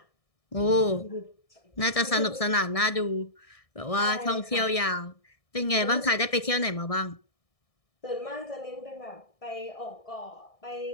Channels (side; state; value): right; late; 1.6 ms